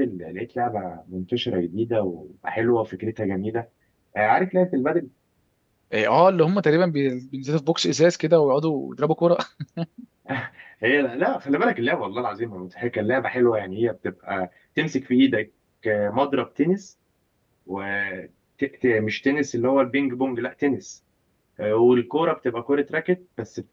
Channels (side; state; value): both; identical; correlation 1.00